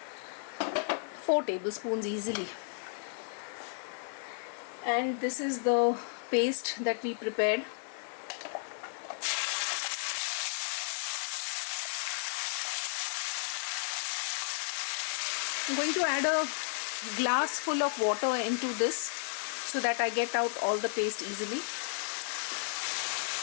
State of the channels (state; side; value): silent; right; digital silence